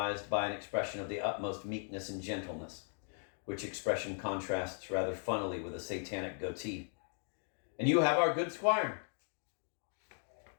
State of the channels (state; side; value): silent; right; 53 dB below the other